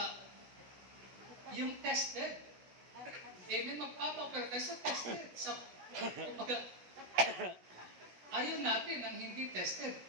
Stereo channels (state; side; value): late; left; 17 ms